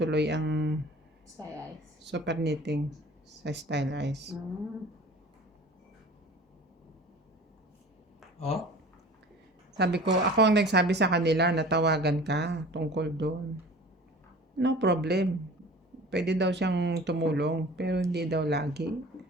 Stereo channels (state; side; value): normal; both; correlation 0.42